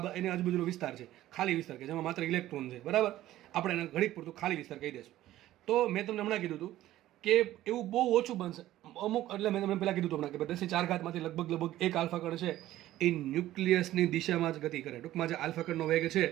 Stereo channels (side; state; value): left; quieter; 14.4 dB